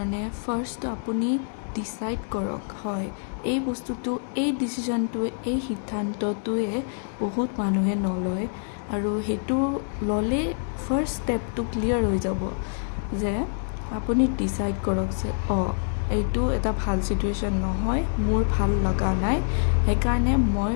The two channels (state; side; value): silent; right; digital silence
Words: ফাৰ্ষ্ট আপুনি ডিচাইড কৰক হয় এই বস্তুটো এই ডিচিশ্যনটোৱে এই সিদ্ধান্তটোৱে বহুত মানুহে নলয় আৰু সেইটো ল'লে ফাৰ্ষ্ট ষ্টেপটো ক্লিয়াৰ হৈ যাব যে আপুনি ডিচাইড কৰক যে এইটো এটা ভাল চিটুৱেশ্যন নহয় মোৰ ভাল লগা নাই সেইকাৰণে মই